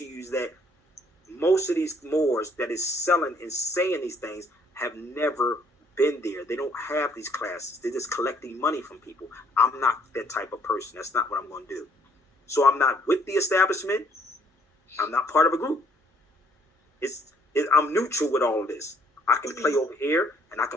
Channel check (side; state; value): both; normal; correlation 0.64